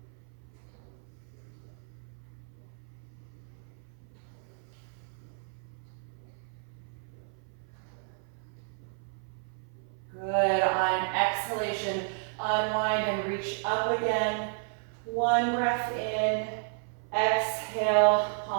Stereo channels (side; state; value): left; silent; 56 dB below the other